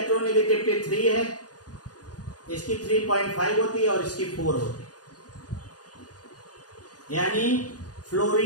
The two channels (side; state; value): right; late; 0.68 ms